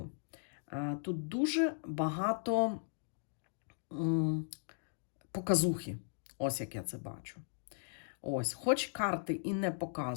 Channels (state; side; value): silent; right; digital silence